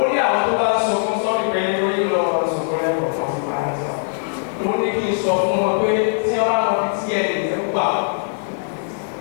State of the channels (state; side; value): silent; right; digital silence